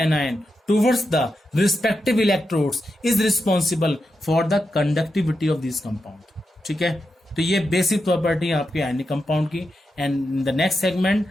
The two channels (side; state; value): both; normal; correlation 0.87